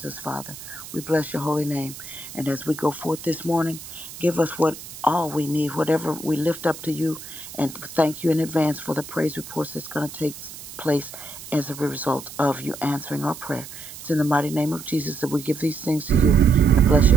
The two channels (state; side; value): noise; right; hiss, 14 dB below the sound